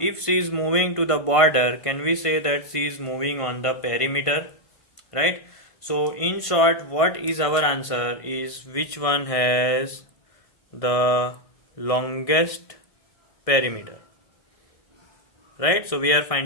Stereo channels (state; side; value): late; right; 1.5 ms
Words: she is moving to the border, can we say that she is moving on the perimeter, right? So in short, what is our answer is which one has the longest perimeter, right? So we are